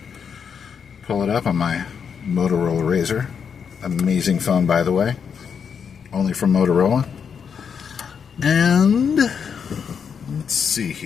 Pull it up on my Motorola Razr. Amazing phone, by the way. Only from Motorola. And let's see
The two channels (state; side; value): quieter; right; 6.8 dB